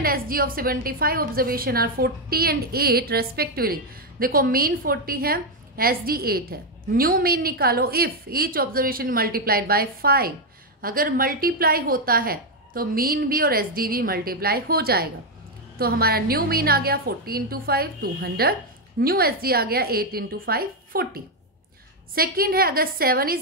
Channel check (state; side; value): normal; both; correlation 0.03